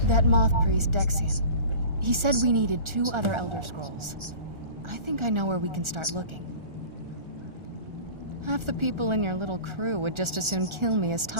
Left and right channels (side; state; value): left; late; 1.4 ms